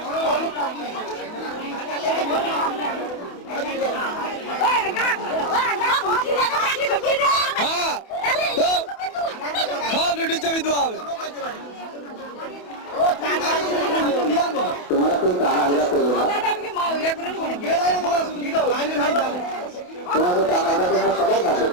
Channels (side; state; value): right; late; 28 ms